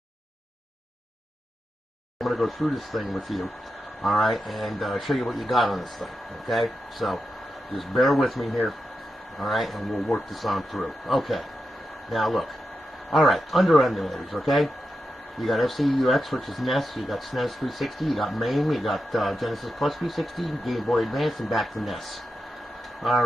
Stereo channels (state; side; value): normal; both; correlation 0.89